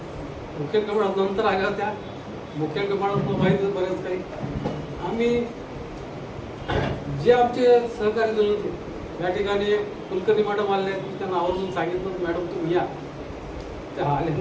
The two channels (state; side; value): identical; both; correlation 1.00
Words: मुख्य कमांड नंतर आल्या त्या मुख्य कमांड माहिती बरेच काही. आम्ही जे आमचे सहकारी जण होते या ठिकाणी कुलकर्णी मॅडम आले, त्यांना आवर्जून सांगितलं मॅडम तुम्ही या. त्या आले